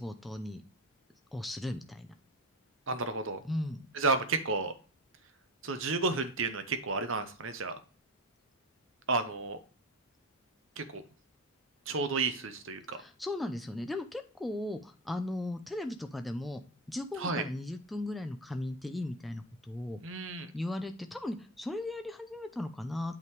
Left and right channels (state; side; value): normal; both; correlation 0.22